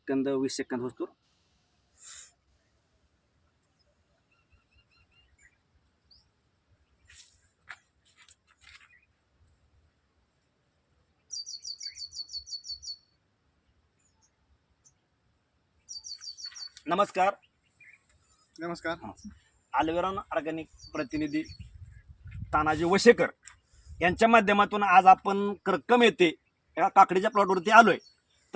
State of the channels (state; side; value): identical; both; correlation 1.00